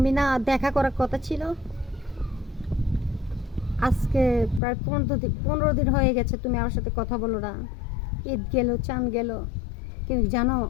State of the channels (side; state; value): right; drops out; at 4.6 s